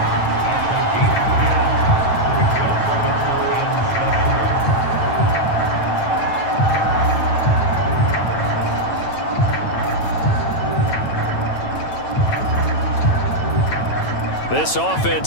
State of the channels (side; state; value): right; late; 9.0 ms